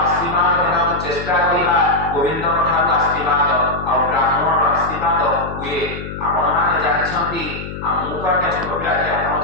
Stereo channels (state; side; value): noise; left; hum, 9 dB below the sound